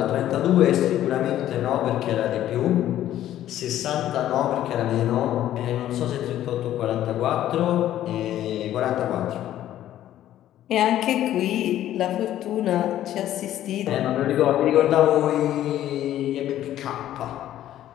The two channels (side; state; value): right; quieter; 12.5 dB